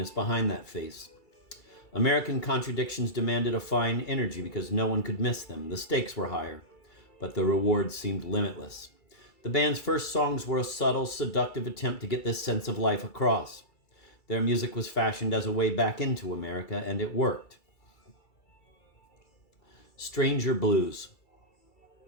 behind that face. American contradictions demanded a fine energy because no one could miss them. The stakes were higher, but the rewards seemed limitless. The band's first songs were a subtle, seductive attempt to get this sense of life across. Their music was fashioned as a way back into America, and it worked. Stranger Blues.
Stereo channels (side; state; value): right; late; 2.3 ms